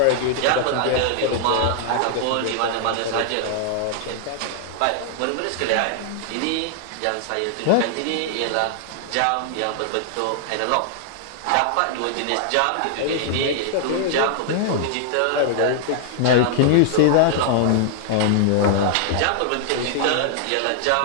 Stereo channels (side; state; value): both; different; correlation -0.01